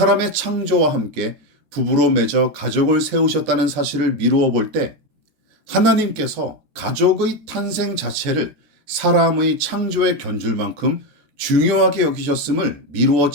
창조와 함께 부부로 맺어 가족을 세우셨다는 사실을 미루어 볼 때 하나님께서 가족의 탄생 자체를 사람의 창조에 견줄 만큼 중요하게 여기셨음을 미루어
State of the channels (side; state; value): left; late; 14 ms